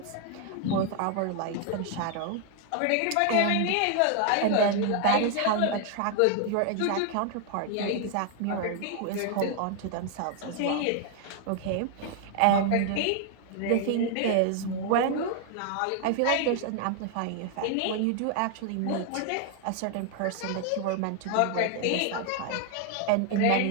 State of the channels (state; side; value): different; both; correlation 0.00